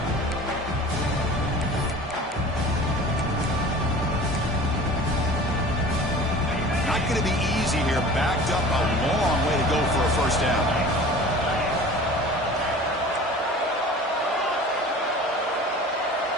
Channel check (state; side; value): normal; both; correlation 0.41